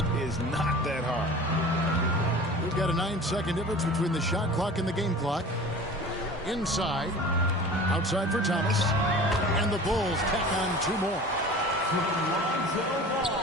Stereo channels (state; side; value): normal; both; correlation 0.39